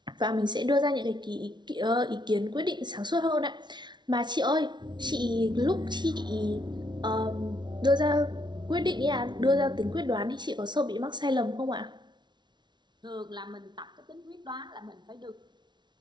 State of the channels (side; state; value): left; late; 0.21 ms